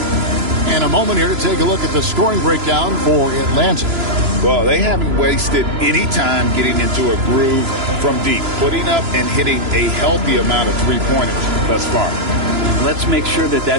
And a moment here to take a look at the scoring breakdown for Atlanta. Well, they haven't wasted any time getting into a groove from deep, putting up and hitting a healthy amount of three-pointers thus far. Let's make sure that that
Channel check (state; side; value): late; left; 3.0 ms